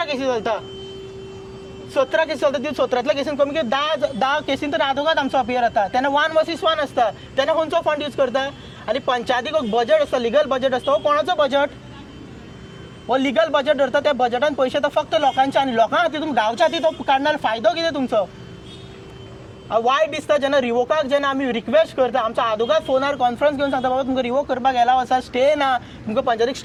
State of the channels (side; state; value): both; identical; correlation 1.00